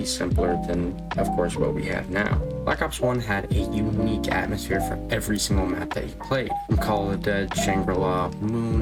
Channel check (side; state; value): both; identical; correlation 1.00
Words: simpler than, of course, what we have now. Black Ops 1 had a unique atmosphere for every single map that you played. From Call of the Dead, Shangri-La,